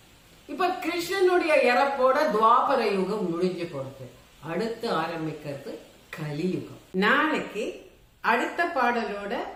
இப்ப கிருஷ்ணனுடைய இறப்போட துவாபர யுகம் முடிஞ்சு போறது. அடுத்து ஆரம்பிக்கிறது கலியுகம். நாளைக்கு அடுத்த பாடலோட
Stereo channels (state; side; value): identical; both; correlation 1.00